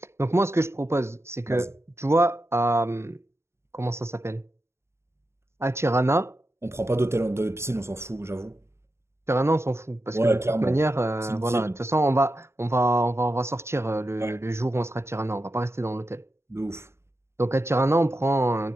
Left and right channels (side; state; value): left; late; 0.13 ms